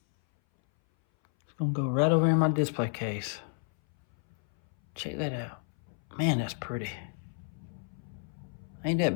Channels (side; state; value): right; silent; 57 dB below the other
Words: It's going to go right over in my display case. Check that out. Man, that's pretty. Ain't